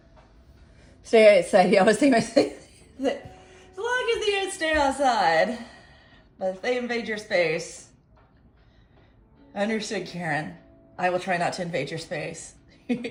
Stay outside. I always think myself that as long as the ants stay outside, but if they invade your space, understood, Karen. I will try not to invade your space.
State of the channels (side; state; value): both; identical; correlation 1.00